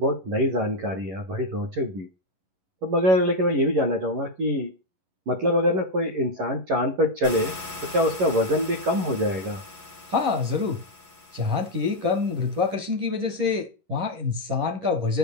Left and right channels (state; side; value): late; left; 11 ms